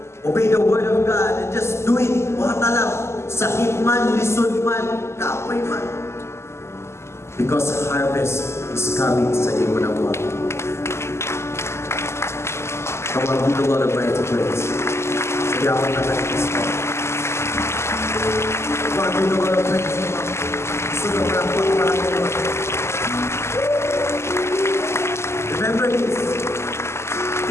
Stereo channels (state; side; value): late; right; 0.13 ms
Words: Obey the word of God and just do it. Huwag na lang. Sakit man, lisod man, kapoy man. Because harvest is coming sa iyo na buwan. Come on, give the Lord a praise. Sigawan na tayo this morning. Come on, give the Lord a praise. Sunod na po para kayo. Remember this.